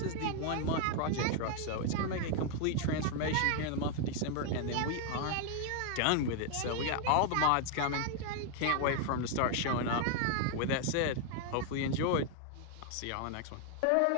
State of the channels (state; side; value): different; both; correlation 0.00